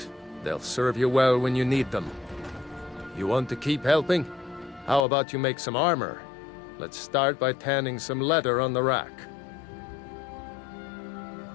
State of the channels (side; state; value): right; drops out; at 5.1 s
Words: They'll serve you well when you need them. You want to keep helping? How about you make some armor? Let's start by tanning some leather on the rack.